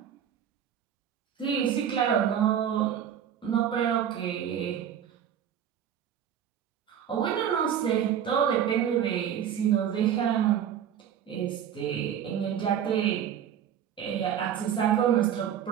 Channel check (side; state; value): left; quieter; 9.3 dB